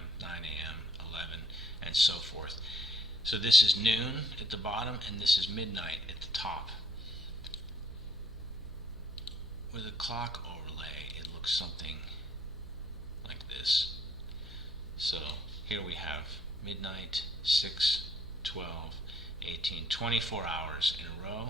9 a.m., 11, and so forth. So this is noon at the bottom, and this is midnight at the top. With a clock overlay, it looks something like this. So here we have midnight, 6, 12, 18, 24 hours in a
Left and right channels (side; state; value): left; noise; hum, 16 dB below the sound